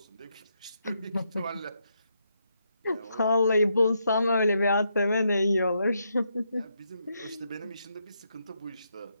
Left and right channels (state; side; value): inverted; both; correlation -0.80